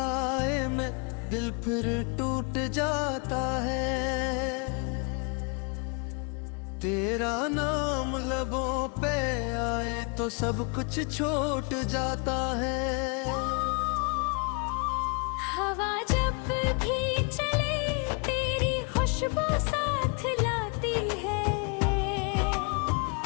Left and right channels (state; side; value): quieter; right; 34.5 dB